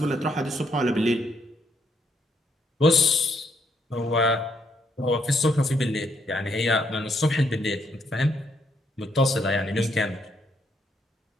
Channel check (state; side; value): normal; both; correlation 0.73